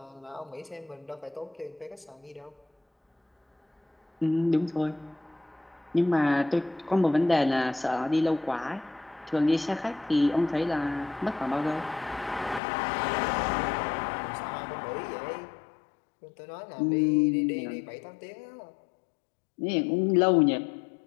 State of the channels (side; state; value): right; drops out; at 12.6 s